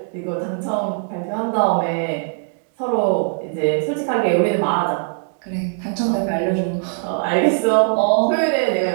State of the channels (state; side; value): silent; left; 65 dB below the other